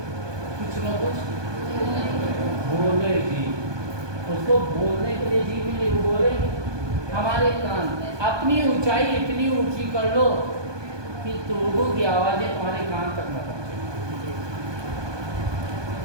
कुछ ना कुछ बोलेगी, उसको बोलने के लिए जी मिले, वो बोलेगी। हमारे कान अपनी ऊंचाई इतनी ऊंची कर लो कि लोगों की आवाज़ें तुम्हारे कान तक न पहुँचे।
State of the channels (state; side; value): late; left; 1.2 ms